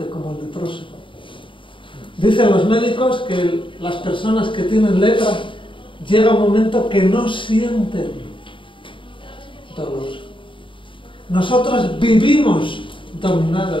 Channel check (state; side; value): late; right; 0.25 ms